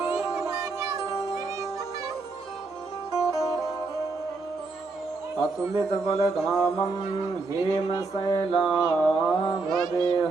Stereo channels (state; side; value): quieter; left; 3.8 dB